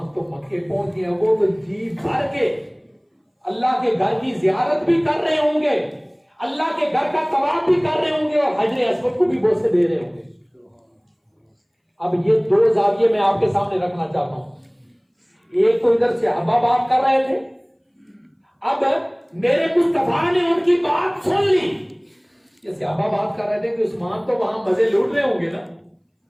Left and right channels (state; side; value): identical; both; correlation 1.00